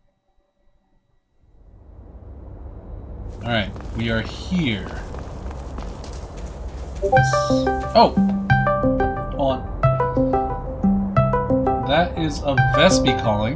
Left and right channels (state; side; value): identical; both; correlation 1.00